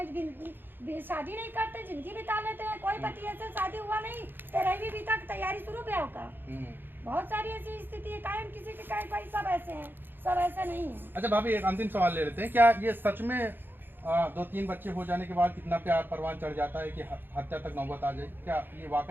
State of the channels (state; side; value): late; left; 0.097 ms